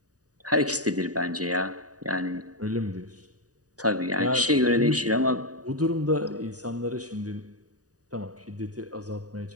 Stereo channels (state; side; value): late; left; 0.67 ms